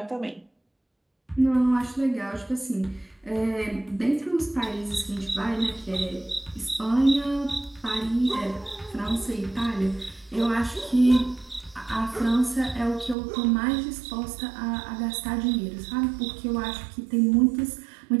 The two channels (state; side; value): drops out; left; at 13.2 s